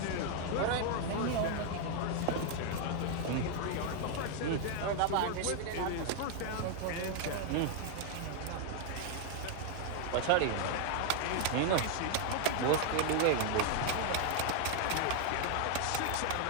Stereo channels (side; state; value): both; different; correlation 0.00